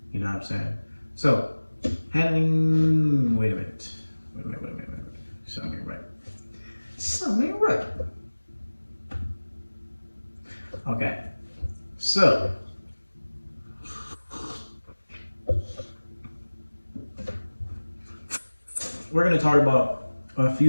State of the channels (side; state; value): both; inverted; correlation -1.00